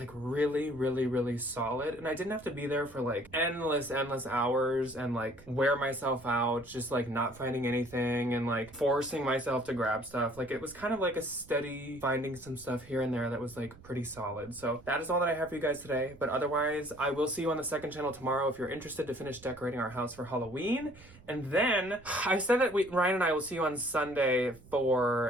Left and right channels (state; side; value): noise; right; rumble, 22 dB below the sound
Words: really, really, really solid, and I didn't have to be there for like endless hours and like wear myself out just like not finding anything and like forcing myself to grab stuff. Like it was kind of like a steady finding some stuff here and there that was like pretty solid. So that is all that I have for you guys today, but otherwise I will see you on the second channel tomorrow if you're interested to finish decorating our house for Halloween. And then I said that Ryan and I will see you on Sunday